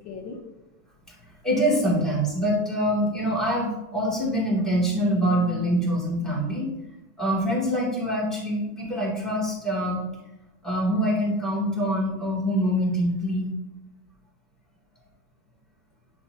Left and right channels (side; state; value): both; normal; correlation 0.34